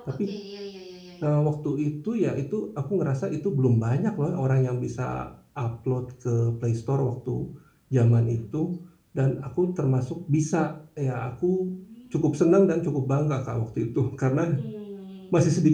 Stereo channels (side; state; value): both; identical; correlation 1.00